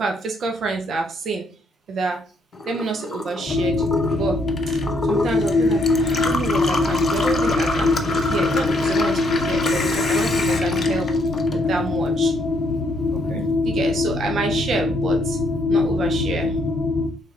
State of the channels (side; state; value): both; normal; correlation 0.71